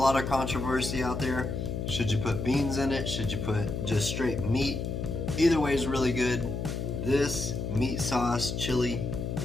of controversy out there. Should you put beans in it? Should you put just straight meat? Either way is really good. This meat sauce chili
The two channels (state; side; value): noise; left; hum, 3 dB below the sound